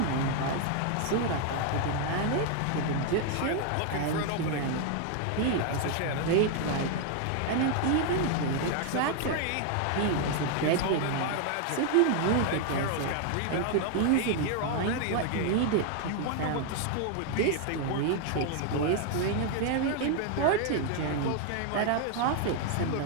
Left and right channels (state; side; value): different; both; correlation 0.00